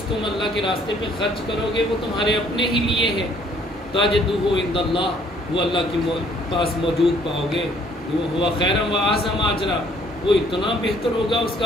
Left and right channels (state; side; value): normal; both; correlation 0.62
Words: تم اللہ کے راستے پہ خرچ کرو گے وہ تمہارے اپنے ہی لیے ہے، تجدوہ عند اللہ، وہ اللہ کے پاس موجود پاؤ گے۔ وہ ہوا خیرا و اعظم اجرا، وہ اتنا بہتر ہوگا، اس